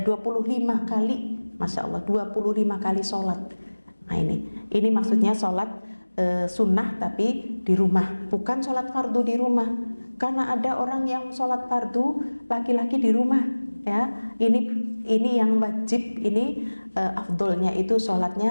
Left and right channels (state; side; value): inverted; both; correlation -1.00